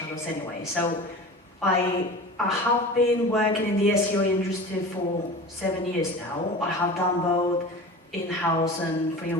anyway. So, I have been working in the SEO industry for 7 years now. I have done both in-house and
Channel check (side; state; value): both; normal; correlation 0.35